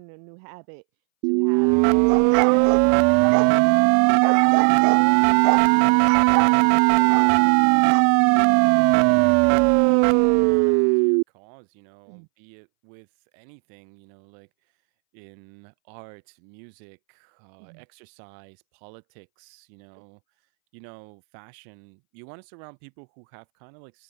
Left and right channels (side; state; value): left; silent; 66 dB below the other